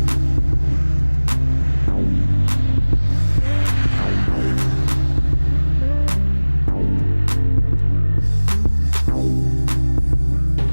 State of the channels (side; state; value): both; inverted; correlation -1.00